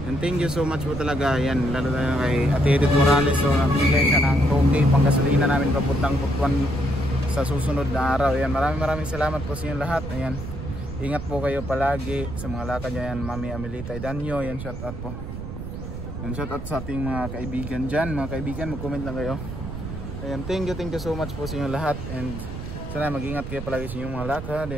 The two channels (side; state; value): right; noise; rumble, 8 dB below the sound